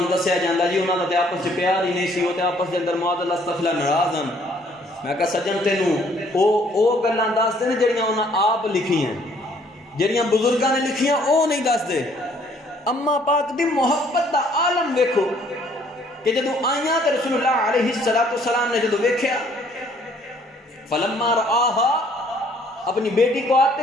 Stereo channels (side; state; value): both; normal; correlation 0.62